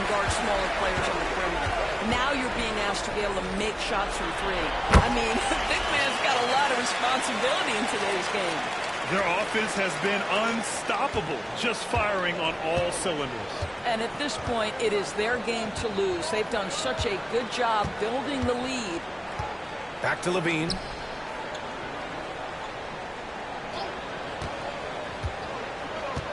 guard smaller players on the perimeter. Now you're being asked to be able to make shots from 3. I mean, big man's got a lot of responsibility in today's game. Their offense has been unstoppable, just firing on all cylinders. And at this point, it is their game to lose. They've done such a good job building the lead. Back to Levine.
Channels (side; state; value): both; identical; correlation 1.00